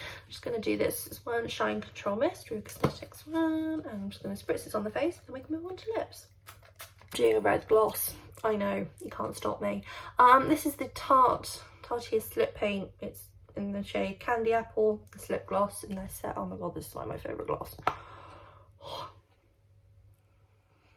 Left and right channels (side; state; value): both; identical; correlation 1.00